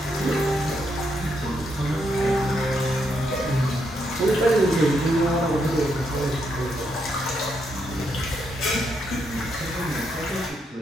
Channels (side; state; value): both; normal; correlation 0.78